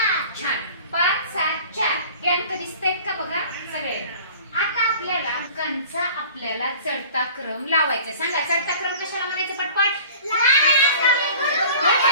छान. 5 7 4 हे अंक दिसतायत का बघा सगळे. आता आपल्याला अंकांचा चढता क्रम लावायचा. सांगा, चढता क्रम कशाला म्हणायचं? पटपट.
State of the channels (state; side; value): inverted; both; correlation -0.45